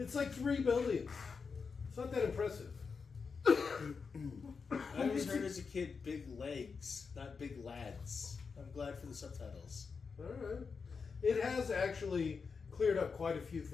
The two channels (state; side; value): quieter; right; 5.3 dB